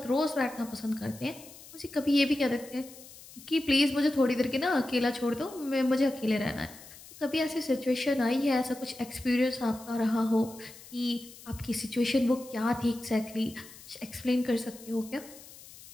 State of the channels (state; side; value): noise; left; hiss, 19 dB below the sound